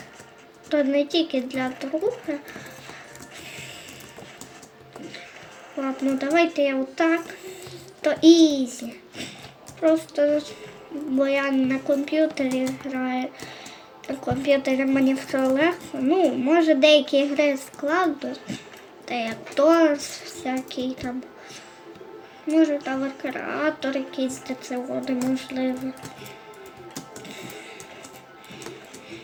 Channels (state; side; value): identical; both; correlation 1.00